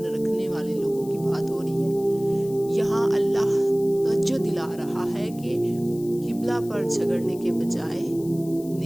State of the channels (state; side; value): noise; left; hiss, 21 dB below the sound